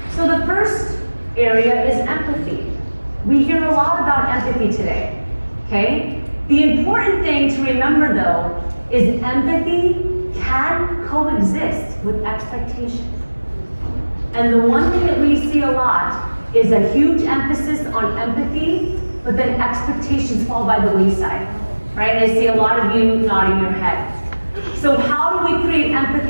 So the first area is empathy. We hear a lot about empathy today. Okay? The important thing to remember though is empathy can coexist with expectation. And the one thing that we see a lot is a huge emphasis on empathy, but then expectations fall by the wayside, right? And I see a lot of you nodding your head. So how do we create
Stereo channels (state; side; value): inverted; both; correlation -1.00